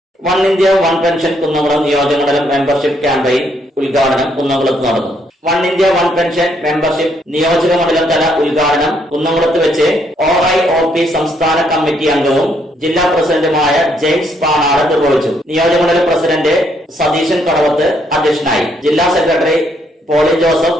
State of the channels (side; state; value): both; normal; correlation 0.72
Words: One India one pension Kunnamkulam നിയോജകമണ്ഡലം മെമ്പർഷിപ്പ് ക്യാമ്പയിൻ ഉദ്ഘാടനം കുന്നംകുളത്ത് നടന്നു. One India one pension membership നിയോജകമണ്ഡലം തല ഉദ്ഘാടനം കുന്നംകുളത്ത് വെച്ച് OIOP സംസ്ഥാന കമ്മിറ്റി അംഗവും ജില്ലാ പ്രസിഡന്റുമായ ജെയിംസ് പാണാട് നിർവഹിച്ചു. നിയോജകമണ്ഡലം പ്രസിഡന്റ് സതീശൻ കടവത്ത് അധ്യക്ഷനായി. ജില്ലാ സെക്രട്ടറി പോളി